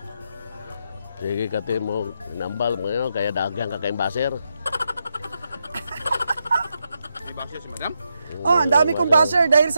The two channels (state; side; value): inverted; both; correlation -0.84